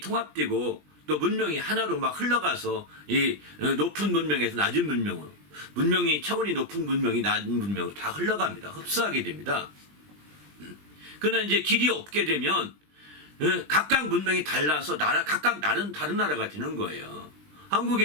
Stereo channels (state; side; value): late; left; 20 ms